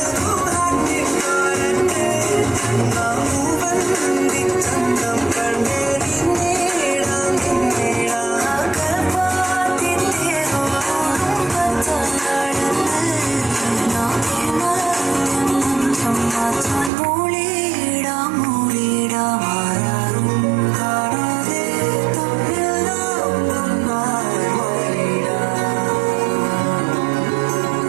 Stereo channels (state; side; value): drops out; left; at 16.9 s